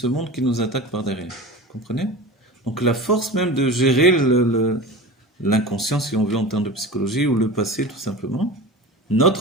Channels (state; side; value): normal; both; correlation 0.32